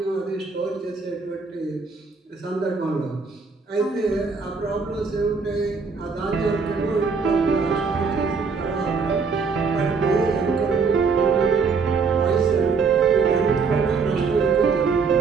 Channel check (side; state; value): left; quieter; 5.0 dB